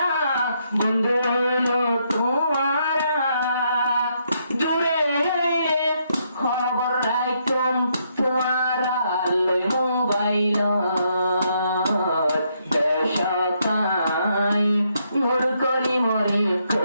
বন্ধু হইলো তোমারা, দূরে হইলে খবর রাখতাম তোমারা লই মোবাইল। বেশকায় নূর করি মরে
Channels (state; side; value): inverted; both; correlation -0.75